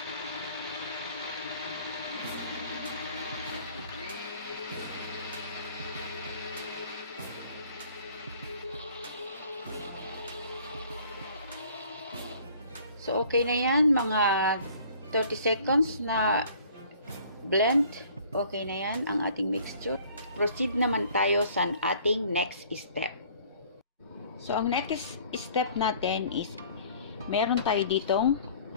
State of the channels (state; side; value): inverted; both; correlation -0.54